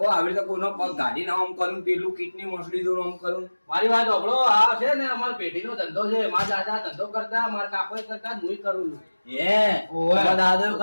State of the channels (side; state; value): both; inverted; correlation -1.00